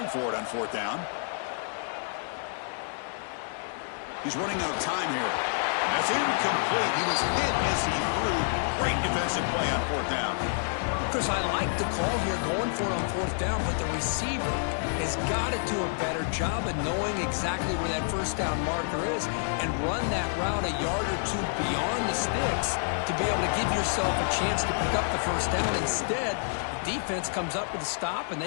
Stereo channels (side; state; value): right; silent; digital silence